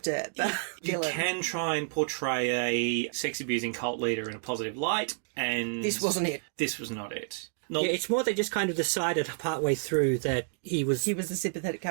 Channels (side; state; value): left; silent; digital silence